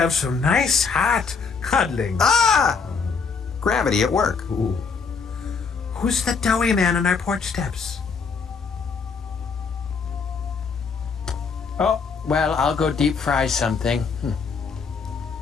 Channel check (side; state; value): right; quieter; 5.3 dB